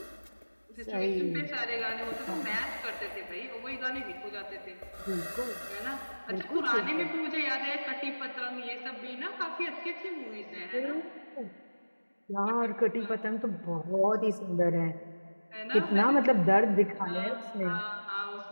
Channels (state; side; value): inverted; both; correlation -1.00